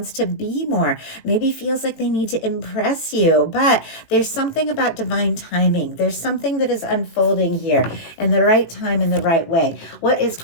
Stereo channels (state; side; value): late; right; 19 ms